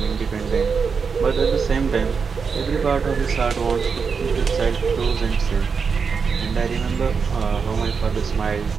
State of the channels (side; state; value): left; quieter; 5.6 dB